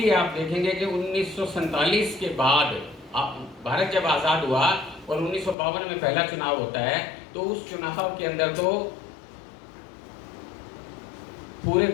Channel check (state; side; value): drops out; right; at 5.6 s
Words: आप देखेंगे कि 1947 के बाद भारत जब आज़ाद हुआ और 1952 में पहला चुनाव होता है, तो उस चुनाव के अंदर तो पूरे